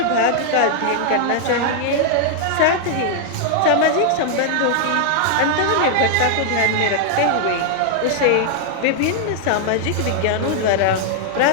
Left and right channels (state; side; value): different; both; correlation 0.00